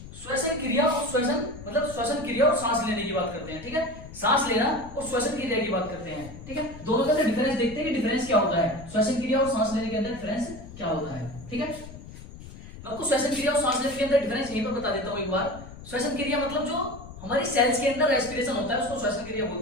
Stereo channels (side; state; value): left; noise; rumble, 15 dB below the sound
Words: श्वसन क्रिया और श्वसन मतलब श्वसन क्रिया और सांस लेने की बात करते हैं। ठीक है, सांस लेना और श्वसन क्रिया की बात करते हैं। ठीक है, दोनों के अंदर डिफरेंस देखते हैं कि डिफरेंस क्या होता है, श्वसन क्रिया और सांस लेने के अंदर डिफरेंस क्या होता है। ठीक है, आपको श्वसन क्रिया और सांस लेने के अंदर डिफरेंस यहीं पर बता देता हूं एक बार। श्वसन क्रिया मतलब जो हमारी सेल्स के अंदर रेस्पिरेशन होता है उसको श्वसन क्रिया